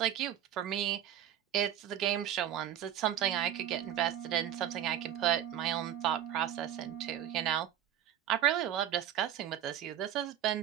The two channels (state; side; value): quieter; left; 10.7 dB